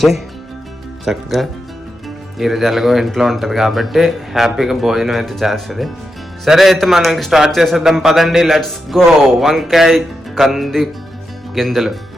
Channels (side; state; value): both; normal; correlation 0.86